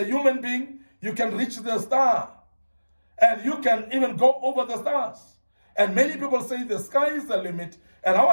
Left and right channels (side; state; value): both; inverted; correlation -1.00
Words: human being, you can reach the star, and you can even go over the stars. And many people say the sky is the limit, and I